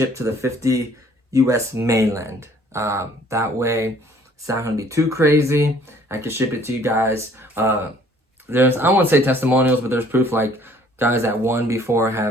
to the 50 US mainland. That way, it's not going to be too crazy. I can ship it to you guys. There's, I won't say testimonials, but there's proof, like guys that won before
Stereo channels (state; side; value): normal; both; correlation 0.57